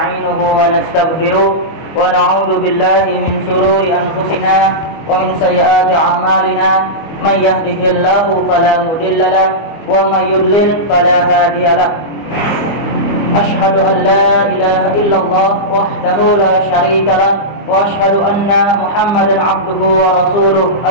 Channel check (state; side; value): late; right; 24 ms